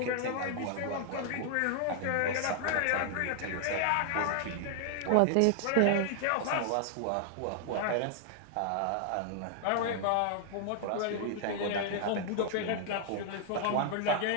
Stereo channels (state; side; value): different; both; correlation 0.00